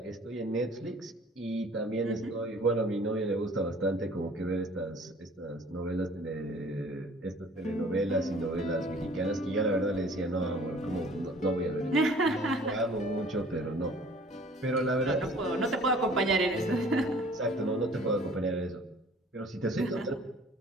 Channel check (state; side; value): normal; both; correlation 0.51